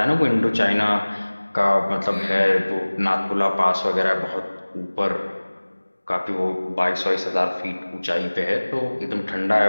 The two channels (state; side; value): inverted; both; correlation -1.00